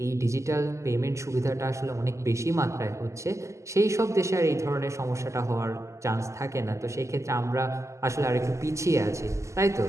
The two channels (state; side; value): late; left; 0.14 ms